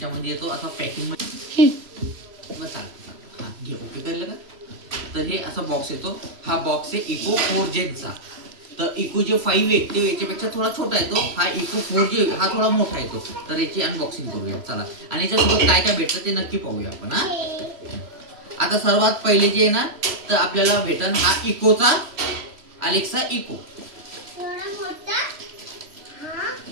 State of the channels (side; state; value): left; late; 3.0 ms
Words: येतो असा पॅकिंग मध्ये हा घे, ओके करलं का. तर हे असा बॉक्स येतो. हा बॉक्स आहे इको 4 जेनचा. तर इको जे 5 आहे ते याच्यापेक्षा थोडा छोटा येतो. हा इको 4 जे हा थोडा मोठा येतो. तर याची अनबॉक्सिंग करूया चला. आणि याच्यासोबत काय काय भेटतं ते नक्की पाहूया आपण. हा आता सर्वात पहिले जे आहे ना, तर आपल्याला भेटन हा इकोचा अलेक्सा इको.